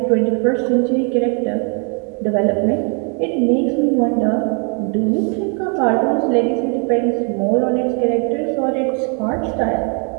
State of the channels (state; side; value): quieter; left; 38.5 dB